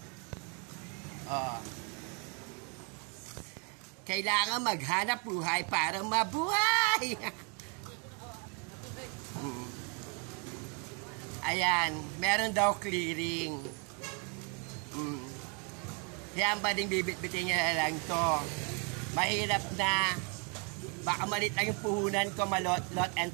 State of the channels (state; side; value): quieter; left; 36.2 dB